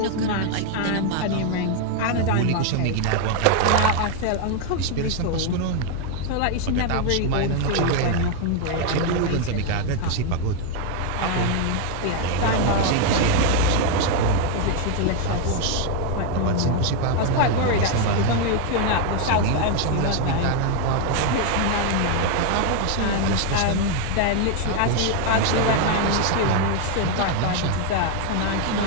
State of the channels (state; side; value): different; both; correlation 0.01